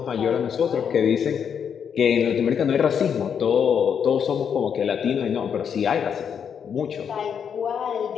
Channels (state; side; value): quieter; right; 7.6 dB